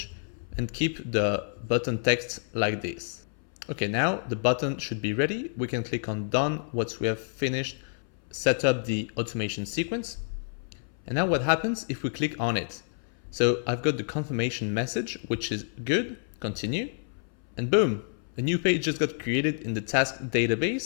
and keep the button text like this. Okay, now the button should be ready. We can click on done once we have finished set up the automation sequence. And now what happens if we click on it? So I've got the confirmation message, which is good, continue, and boom, a new page just got created in the task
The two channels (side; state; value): right; silent; 59 dB below the other